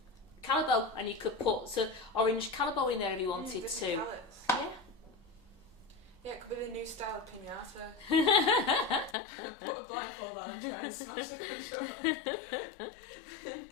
Calibo, and you could put orange Calibo in there if you wanted to. Colours. Yeah. Yeah, it could be the new style of pinata. Put a blindfold on and try and smash the controller.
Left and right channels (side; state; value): right; drops out; at 9.2 s